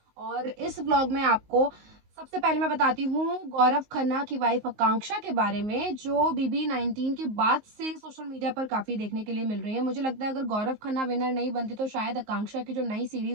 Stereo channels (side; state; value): left; late; 19 ms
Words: और इस व्लॉग में आपको सबसे पहले मैं बताती हूँ गौरव खन्ना की वाइफ आकांक्षा के बारे में, जो बीबी 19 के बाद से सोशल मीडिया पर काफी देखने के लिए मिल रही है। मुझे लगता है अगर गौरव खन्ना विनर नहीं बनती तो शायद आकांक्षा की जो नई